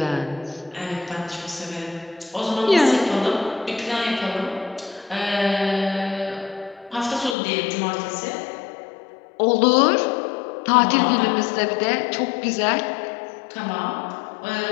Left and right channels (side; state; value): right; drops out; at 7.4 s